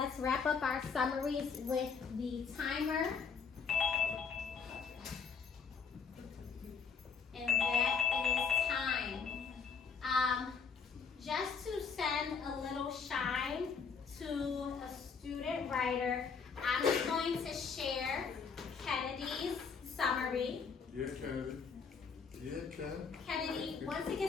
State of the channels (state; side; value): quieter; right; 5.8 dB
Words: wrap up our summaries with the timer. And that is time. Just to send a little shine to a student writer, I'm just going to share Kennedy's summary. Yeah, Kennedy. Yeah, Kennedy. Kennedy, once it